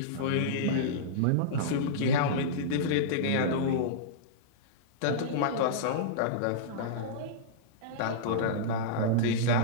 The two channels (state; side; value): different; both; correlation -0.03